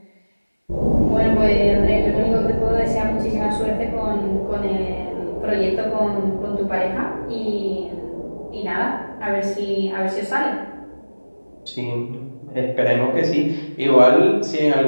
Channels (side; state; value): both; inverted; correlation -1.00